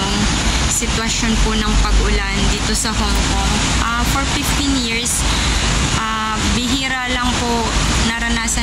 sitwasyon po ng pag-ulan dito sa Hong Kong. For 15 years, bihira lang po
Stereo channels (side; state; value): both; identical; correlation 1.00